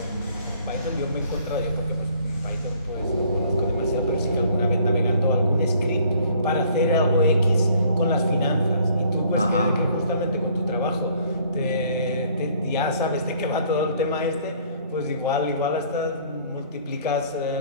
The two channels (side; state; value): both; inverted; correlation -0.58